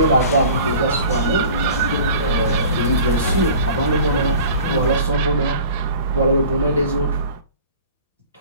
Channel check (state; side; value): inverted; both; correlation -0.44